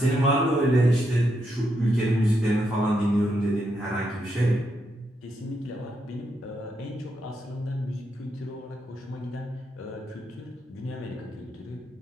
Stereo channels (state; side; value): normal; both; correlation 0.81